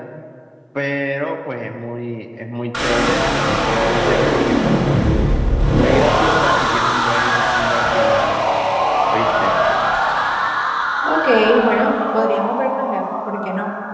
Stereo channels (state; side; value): identical; both; correlation 1.00